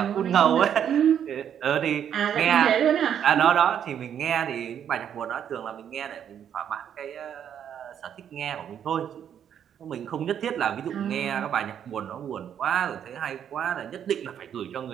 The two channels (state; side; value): quieter; left; 9.1 dB